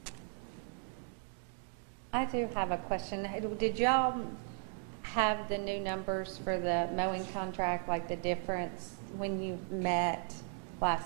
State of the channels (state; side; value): silent; left; 54 dB below the other